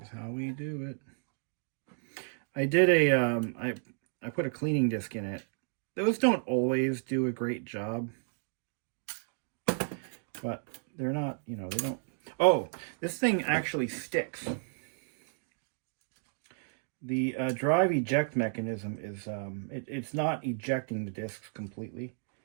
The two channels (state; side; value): silent; left; digital silence